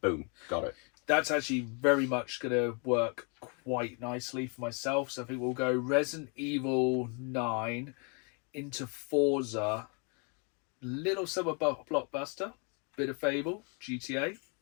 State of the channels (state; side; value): quieter; right; 36.1 dB